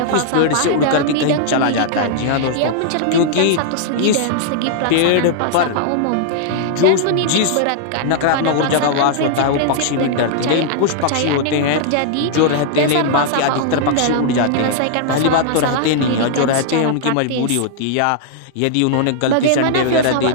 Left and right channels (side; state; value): both; different; correlation -0.01